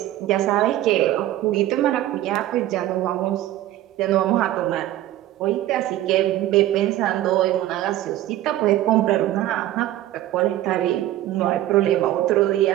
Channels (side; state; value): left; quieter; 14.2 dB